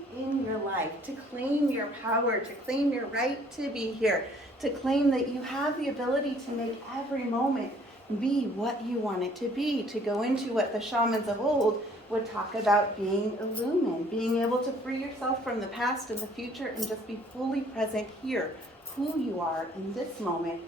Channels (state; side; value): normal; both; correlation 0.59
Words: in your life, to claim your power, to claim your right to be here, to claim that you have the ability to make every moment be what you want it to be, to go into what the shamans of old would talk about being illumined, being able to free yourself from the past and the future and just be fully present here, who you are in this moment